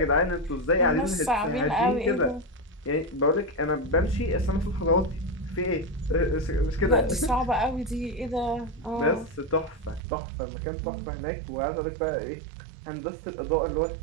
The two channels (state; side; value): drops out; left; at 10.0 s